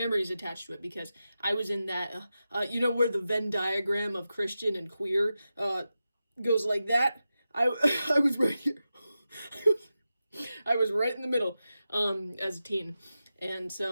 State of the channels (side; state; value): both; inverted; correlation -0.92